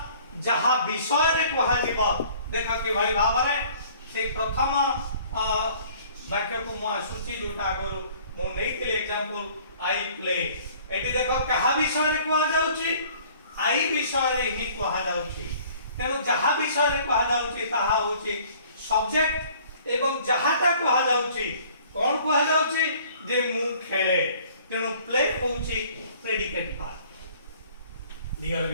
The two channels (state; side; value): inverted; both; correlation -0.54